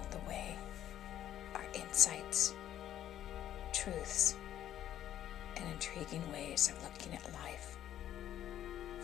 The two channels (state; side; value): quieter; right; 11.5 dB